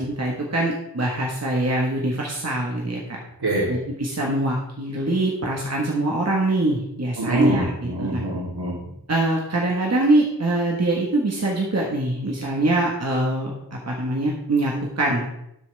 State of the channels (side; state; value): both; normal; correlation 0.50